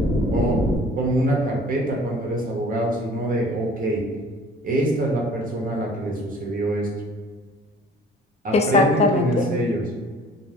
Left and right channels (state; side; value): normal; both; correlation 0.50